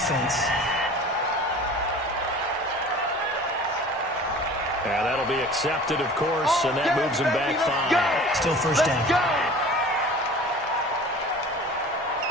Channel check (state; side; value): normal; both; correlation 0.42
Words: Yeah, that'll be accepted, of course, and that moves him back 5. Still first down.